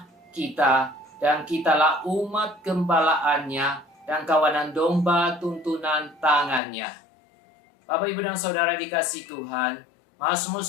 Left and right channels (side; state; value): right; drops out; at 6.6 s